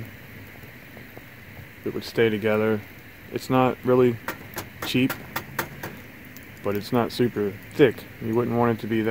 It would stay together. It's not really cheap, but it's not super thick. You wouldn't want it to be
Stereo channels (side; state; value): both; identical; correlation 1.00